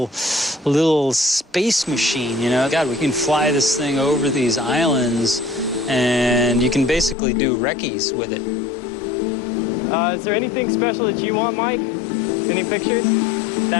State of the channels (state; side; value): drops out; right; at 7.2 s